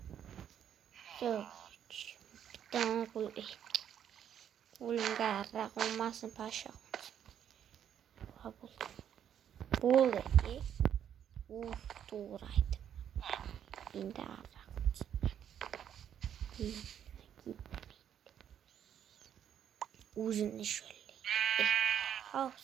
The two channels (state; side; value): quieter; left; 9.4 dB